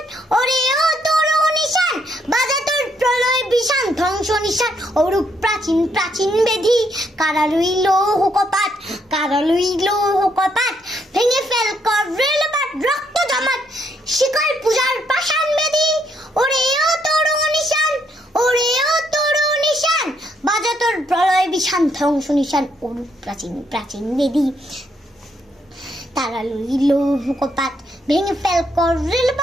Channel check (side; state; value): both; normal; correlation 0.73